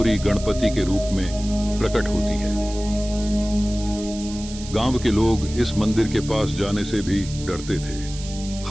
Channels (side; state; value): right; noise; hiss, 14 dB below the sound